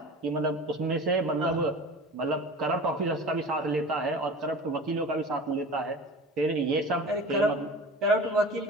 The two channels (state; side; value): normal; both; correlation 0.37